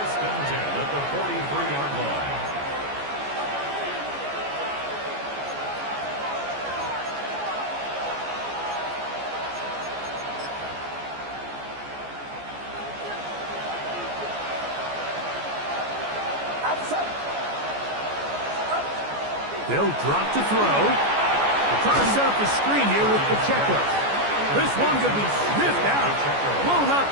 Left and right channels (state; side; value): late; left; 14 ms